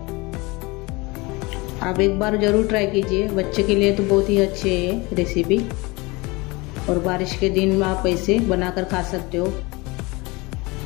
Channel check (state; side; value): quieter; right; 24.7 dB